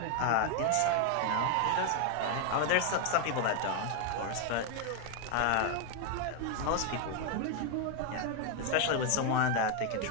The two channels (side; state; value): both; different; correlation 0.00